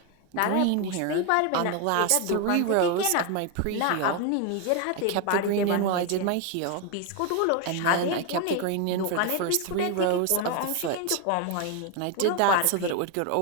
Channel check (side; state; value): both; different; correlation 0.01